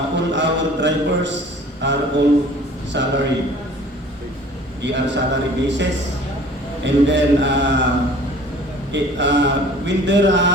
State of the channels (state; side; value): normal; both; correlation 0.48